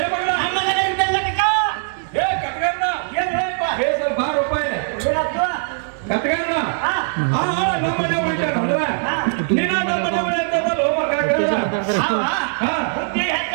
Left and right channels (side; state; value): left; silent; 66 dB below the other